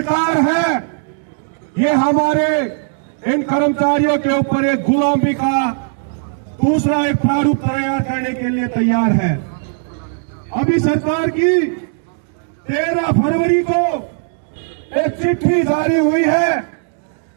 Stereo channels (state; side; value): silent; left; digital silence